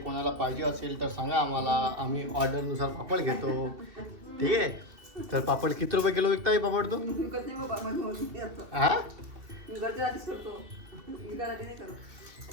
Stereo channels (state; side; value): late; left; 2.7 ms